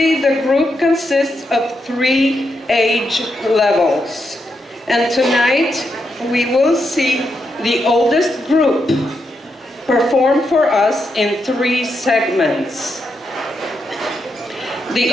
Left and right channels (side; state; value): both; normal; correlation 0.83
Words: the group consists of 3 age levels, and tonight we will see the oldest group perform for us in 3 segments. The